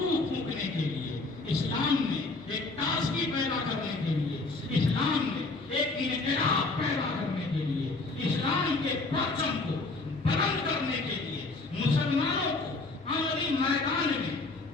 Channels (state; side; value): quieter; right; 3.4 dB